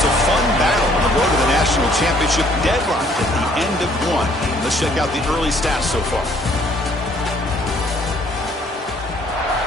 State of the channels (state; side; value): normal; both; correlation 0.62